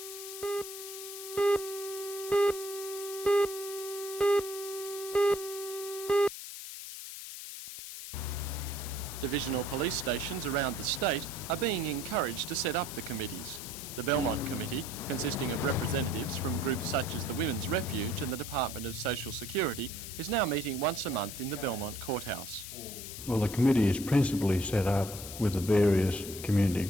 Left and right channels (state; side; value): noise; left; hiss, 9 dB below the sound